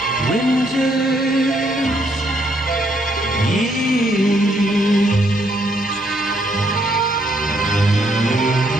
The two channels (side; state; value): both; normal; correlation 0.72